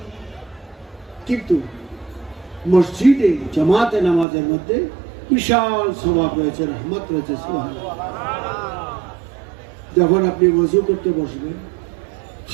কিন্তু মসজিদে জামাতে নামাজের মধ্যে বিশাল সওয়াব রয়েছে, রহমত রয়েছে। সুবহানাল্লাহ। যখন আপনি ওযু করতে বসবেন,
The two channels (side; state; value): left; drops out; at 4.2 s